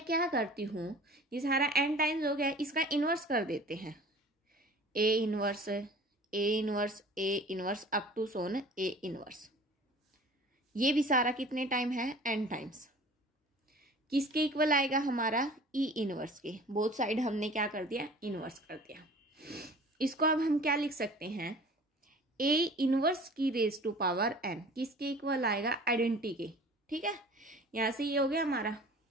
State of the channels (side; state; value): both; normal; correlation 0.45